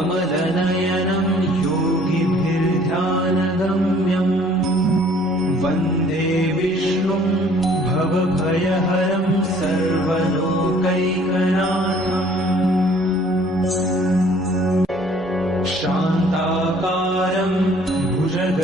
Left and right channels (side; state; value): both; normal; correlation 0.56